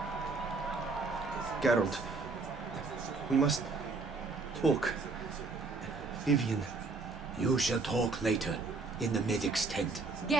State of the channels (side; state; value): left; quieter; 3.9 dB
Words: Geralt, we must talk. Vivian. You shall talk later, in the medic's tent.